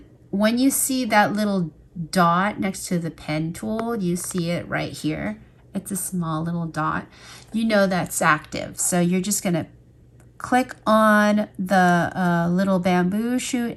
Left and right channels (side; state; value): both; identical; correlation 1.00